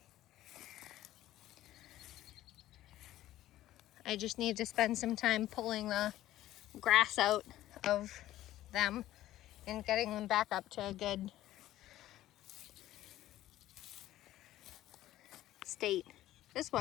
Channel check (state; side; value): quieter; right; 14.3 dB